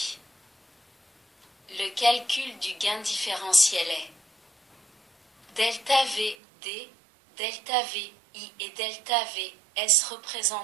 Le calcul du gain différentiel est delta V D, delta V I et delta V S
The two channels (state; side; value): drops out; left; at 6.4 s